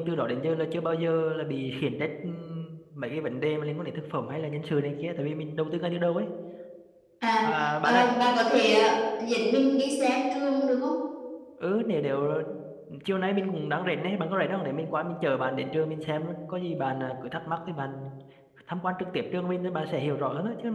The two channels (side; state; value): both; identical; correlation 1.00